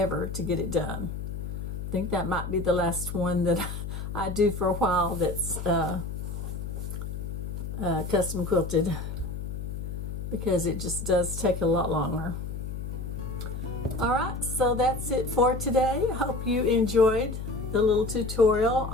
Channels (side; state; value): left; noise; hum, 6 dB below the sound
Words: to get it done. I think that might be the last one that I do for a while that's custom quilted, because it just does take a lot longer. Alright, so that's it for today. I hope you enjoyed the little tutorial